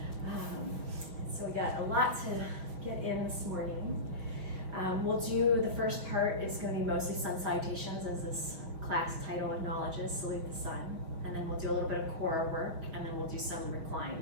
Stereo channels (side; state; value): left; late; 5.5 ms